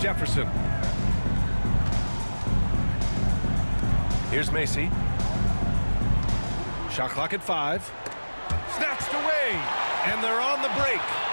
Jefferson. Here's Macy. Shot clock at 5. Snatched away. And they're on the break.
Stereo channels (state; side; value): inverted; both; correlation -1.00